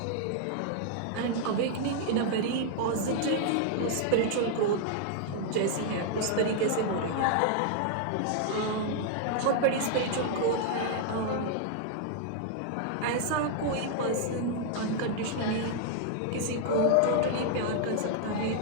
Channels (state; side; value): different; both; correlation 0.00